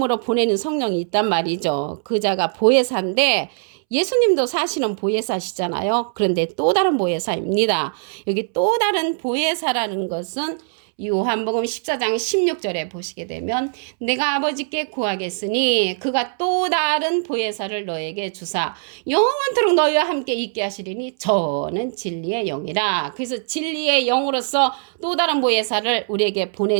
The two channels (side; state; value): left; silent; 65 dB below the other